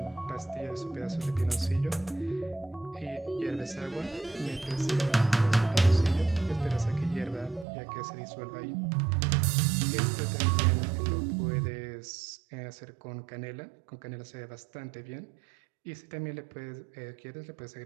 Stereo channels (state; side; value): drops out; left; at 7.7 s